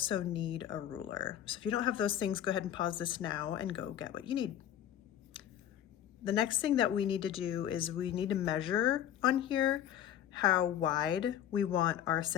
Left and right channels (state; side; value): quieter; right; 10.8 dB